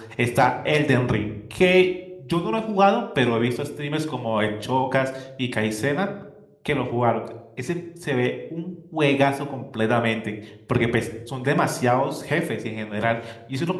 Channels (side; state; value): both; identical; correlation 1.00